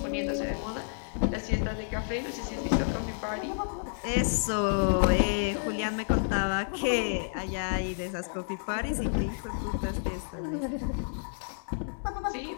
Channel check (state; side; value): silent; right; 58 dB below the other